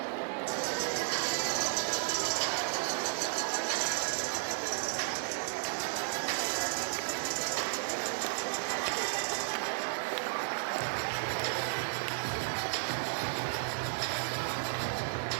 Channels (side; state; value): left; silent; 55 dB below the other